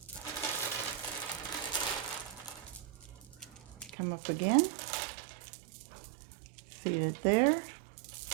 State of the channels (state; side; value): drops out; left; at 3.9 s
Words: Come up again. Feed it there.